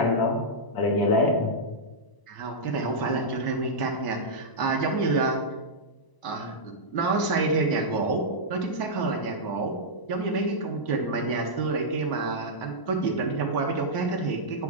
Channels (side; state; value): right; late; 1.0 ms